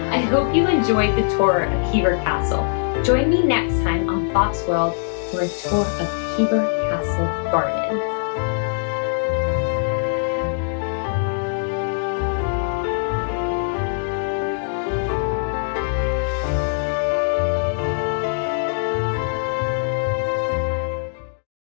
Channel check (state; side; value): silent; right; digital silence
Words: I hope you enjoyed the tour of Hever Castle. Join me next time on Bob's World for a tour of Hever Castle Gardens.